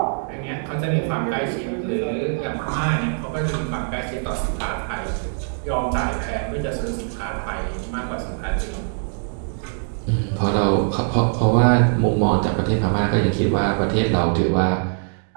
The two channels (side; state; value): left; silent; 64 dB below the other